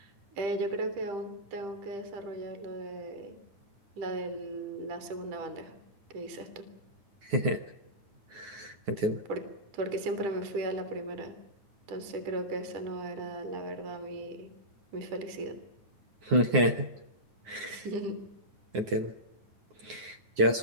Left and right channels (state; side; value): late; left; 9.5 ms